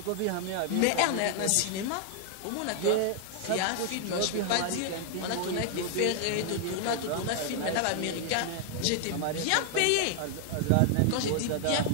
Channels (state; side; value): different; both; correlation 0.00